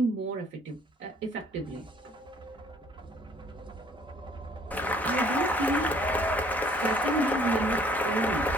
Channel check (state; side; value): normal; both; correlation 0.59